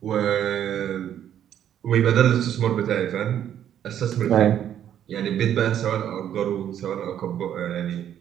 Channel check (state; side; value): quieter; left; 10.2 dB